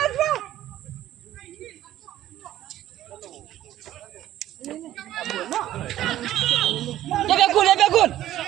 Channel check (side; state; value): left; quieter; 13.3 dB